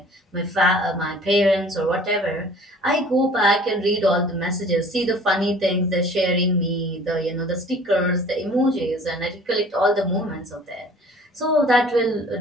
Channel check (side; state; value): both; normal; correlation 0.49